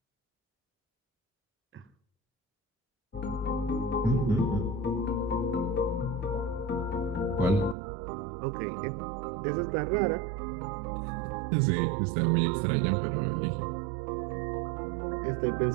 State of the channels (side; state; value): left; drops out; at 7.8 s